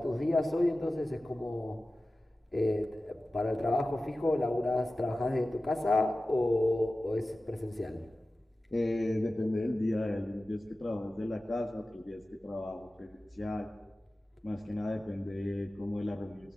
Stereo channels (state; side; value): normal; both; correlation 0.95